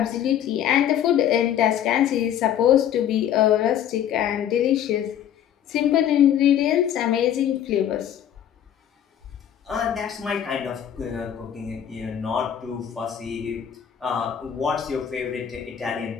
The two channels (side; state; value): right; quieter; 10.0 dB